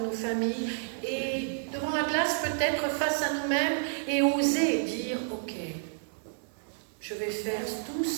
nos familles, et devant la glace peut-être face à nous-mêmes, et oser dire « Ok, je vais faire tout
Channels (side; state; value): left; silent; digital silence